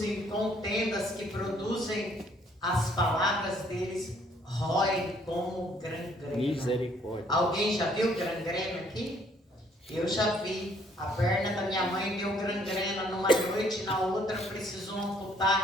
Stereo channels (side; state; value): both; normal; correlation 0.64